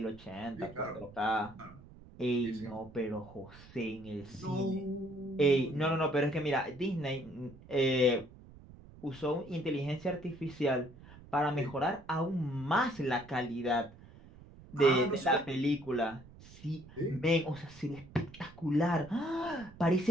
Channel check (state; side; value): noise; right; rumble, 20 dB below the sound